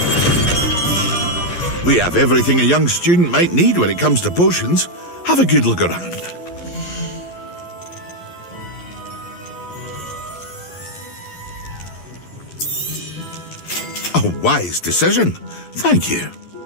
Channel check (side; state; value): right; late; 11 ms